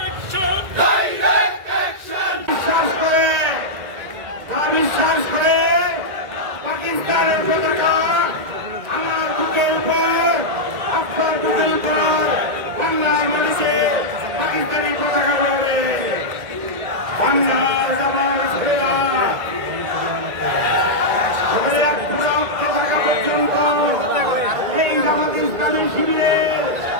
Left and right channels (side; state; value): left; late; 1.9 ms